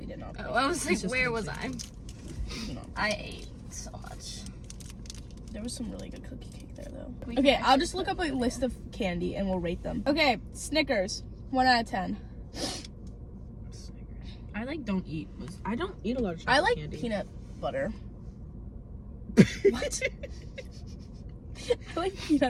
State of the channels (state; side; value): identical; both; correlation 1.00